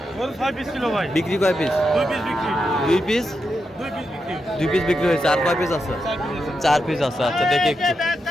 বিক্রি কয় পিস? দুই পিস বিক্রি হয়েছে। আর কয় পিস আছে? 4 পিস আছে। আচ্ছা দেখি একটু।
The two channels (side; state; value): both; normal; correlation 0.86